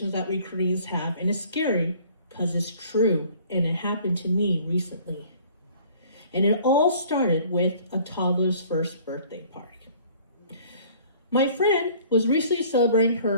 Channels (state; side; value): inverted; both; correlation -0.53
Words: that we Koreans have, and it's scary because it's true, and it happened to me recently. And it all started with a toddler's first birthday party. My friend was recently celebrating